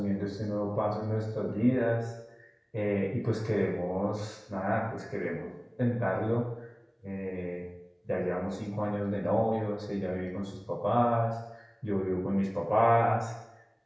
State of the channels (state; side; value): identical; both; correlation 1.00